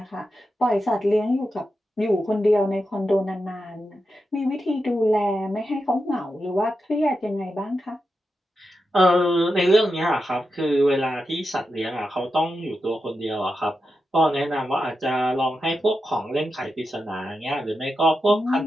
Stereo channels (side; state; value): both; normal; correlation 0.89